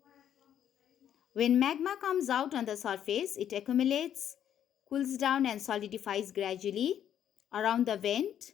When magma comes out on the surface, it accumulates, cools down and solidifies gradually around the vent,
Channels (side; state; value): right; quieter; 9.9 dB